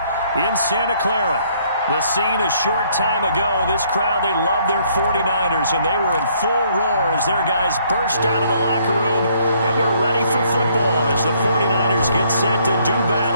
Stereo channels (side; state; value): both; inverted; correlation -0.66